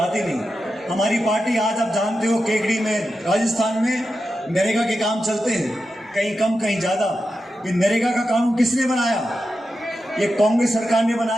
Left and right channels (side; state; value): both; normal; correlation 0.90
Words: नहीं। हमारी पार्टी आज आप जानते हो केकड़ी में, राजस्थान में नरेगा के काम चलते हैं, कहीं कम कहीं ज्यादा। ये नरेगा का कानून किसने बनाया? ये कांग्रेस सरकार ने